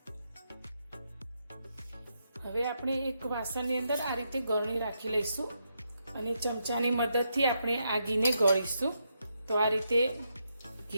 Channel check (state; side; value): inverted; both; correlation -0.81